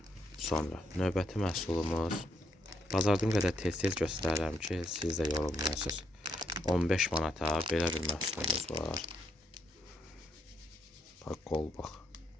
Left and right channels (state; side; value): normal; both; correlation 0.76